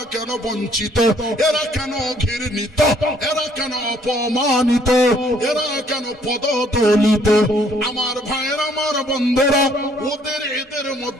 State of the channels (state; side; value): normal; both; correlation 0.63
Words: কেন বঞ্চিত, এরা কেন ঘৃণিত, এরা কেন অপমানিত, এরা কেন পদদলিত। আমার ভাইয়ের, আমার বন্ধুরা, ওদের এদের